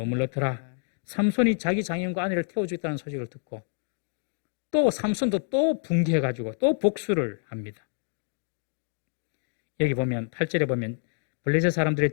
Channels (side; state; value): right; silent; 56 dB below the other